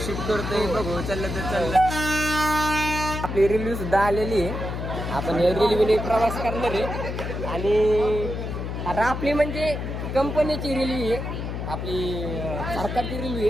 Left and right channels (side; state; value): left; noise; hum, 5 dB below the sound